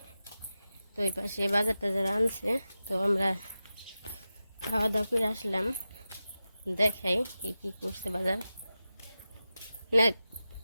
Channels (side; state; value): both; inverted; correlation -0.93